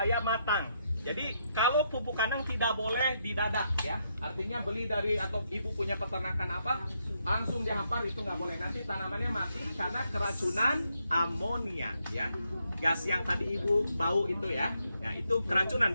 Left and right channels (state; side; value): inverted; both; correlation -0.78